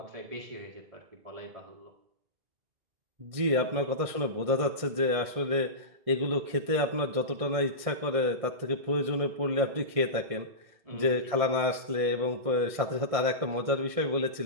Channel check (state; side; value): late; left; 1.6 ms